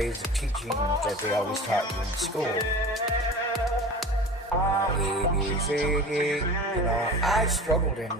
of teaching that they always taught you in school. A, B, C, D, I struggled in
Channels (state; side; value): normal; both; correlation 0.36